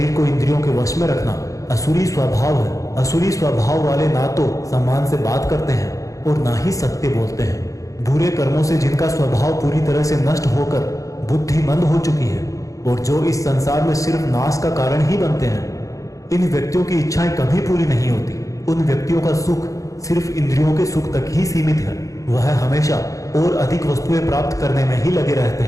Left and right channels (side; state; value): right; late; 0.16 ms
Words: को इंद्रियों के वश में रखना असुरी स्वभाव है। असुरी स्वभाव वाले ना तो सम्मान से बात करते हैं और ना ही सत्य बोलते हैं। बुरे कर्मों से जिनका स्वभाव पूरी तरह से नष्ट होकर बुद्धि मंद हो चुकी है और जो इस संसार में सिर्फ नाश का कारण ही बनते हैं, इन व्यक्तियों की इच्छाएं कभी पूरी नहीं होती। उन व्यक्तियों का सुख सिर्फ इंद्रियों के सुख तक ही सीमित है। वह हमेशा और अधिक वस्तुएं प्राप्त करने में ही लगे रहते